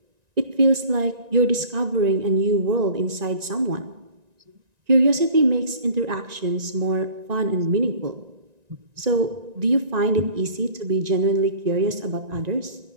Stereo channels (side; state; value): left; late; 1.9 ms